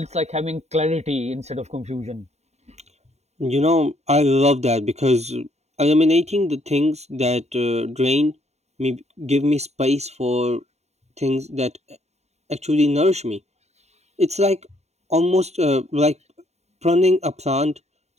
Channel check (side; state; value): left; late; 0.32 ms